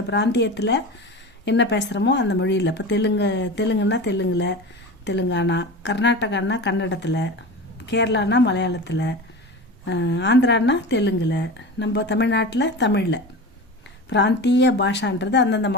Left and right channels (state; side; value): normal; both; correlation 0.30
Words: பிராந்தியத்தில் என்ன பேசுகிறோமோ அந்த மொழியில். இப்போ தெலுங்குன்னா தெலுங்கில், தெலுங்கானா, கர்நாடகான்னா கன்னடத்தில், கேரளானா மலையாளத்தில், ஆந்திரானா தெலுங்கில், நம்ம தமிழ்நாட்டில் தமிழில். பிராந்திய பாஷான்றது அந்தந்த